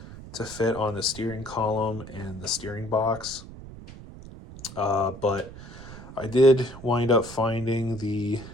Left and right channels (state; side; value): noise; right; rumble, 15 dB below the sound